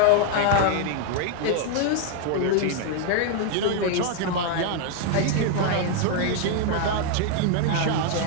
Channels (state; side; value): different; both; correlation 0.00